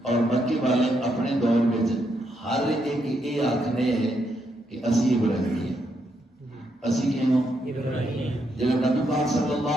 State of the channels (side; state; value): both; normal; correlation 0.78